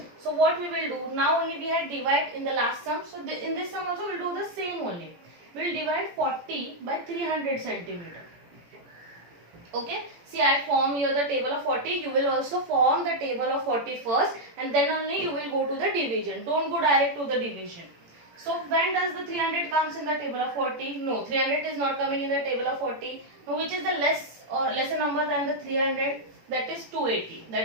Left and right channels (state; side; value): late; left; 18 ms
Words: So what we will do, now only we had divide in the last sum. So in this sum also we will do the same only. We will divide 40 by 300 centimeter. Okay, see I form here the table of 40. You will also form the table of 40 first and then only you will go to the division. Don't go direct to the division. So when does the 300 comes in the table of 40? No, 300 is not coming in the table of 40. Now which is the lesser number than the 300? That is 280.